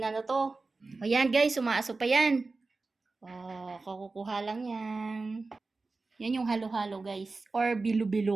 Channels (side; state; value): left; quieter; 3.7 dB